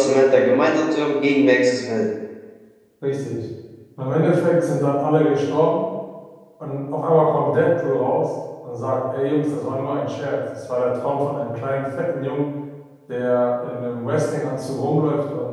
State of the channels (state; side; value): identical; both; correlation 1.00